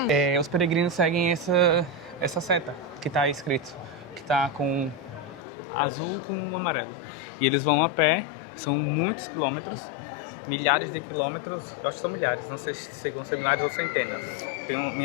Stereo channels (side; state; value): right; drops out; at 5.4 s